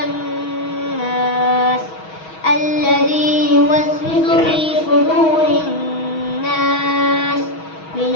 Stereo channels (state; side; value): late; right; 6.3 ms